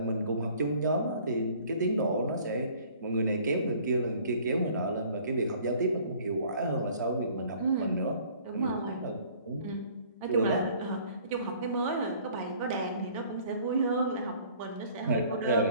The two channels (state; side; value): inverted; both; correlation -0.54